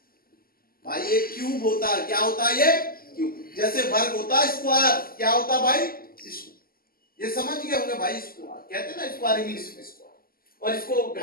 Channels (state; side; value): late; right; 0.42 ms